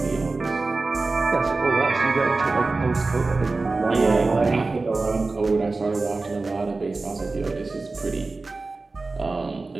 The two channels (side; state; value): left; quieter; 3.6 dB